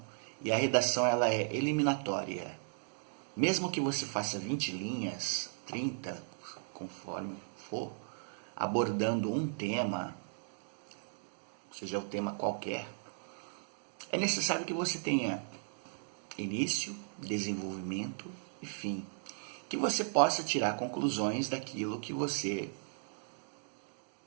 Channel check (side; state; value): left; silent; digital silence